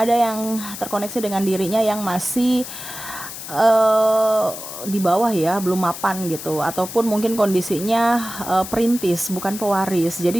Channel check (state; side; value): noise; left; hiss, 10 dB below the sound